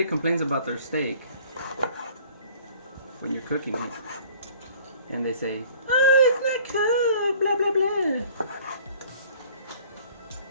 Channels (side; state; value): both; inverted; correlation -0.53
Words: complains about their steak when you're cooking it, and they say, "Oh, it's not cooked," blah blah blah,